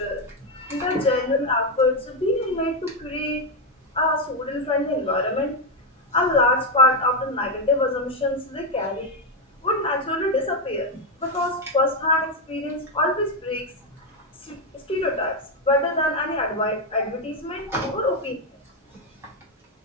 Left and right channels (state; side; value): normal; both; correlation 0.05